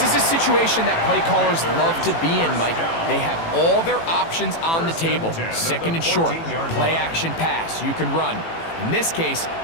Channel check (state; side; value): late; right; 18 ms